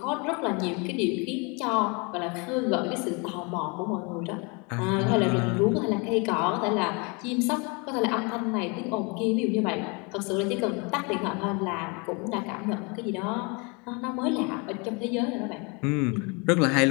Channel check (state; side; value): quieter; right; 30.8 dB